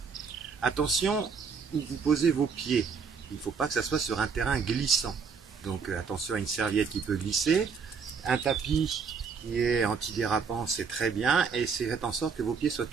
Attention où vous posez vos pieds. Il ne faut pas que ça soit sur un terrain glissant. Donc attention à une serviette qui peut glisser. Un tapis qui est antidérapant, c'est très bien. Et faites en sorte que vos pieds soient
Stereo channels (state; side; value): quieter; left; 5.7 dB